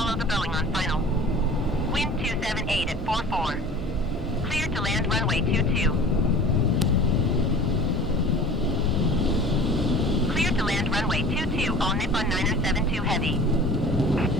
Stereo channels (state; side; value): normal; both; correlation 0.42